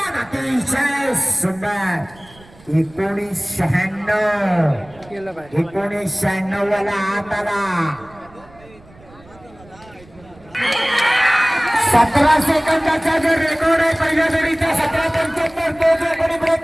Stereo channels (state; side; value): noise; right; rumble, 25 dB below the sound